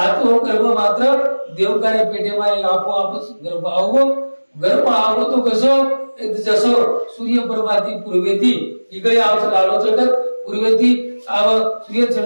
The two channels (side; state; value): both; inverted; correlation -1.00